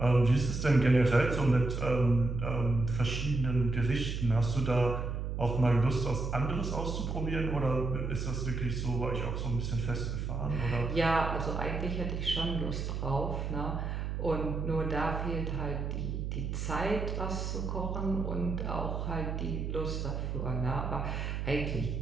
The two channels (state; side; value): noise; right; hum, 3 dB below the sound